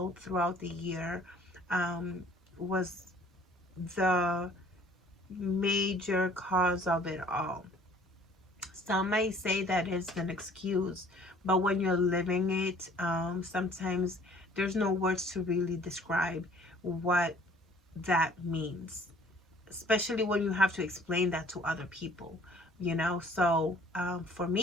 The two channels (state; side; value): normal; both; correlation 0.55